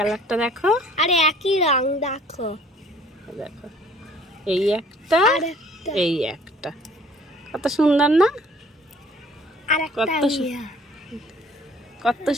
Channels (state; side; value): normal; both; correlation 0.55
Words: দেখো, আরে একই রং দেখো, দেখো, এই একটা, আর একটা, এই একটা, কত সুন্দর না? আর একটা কত কত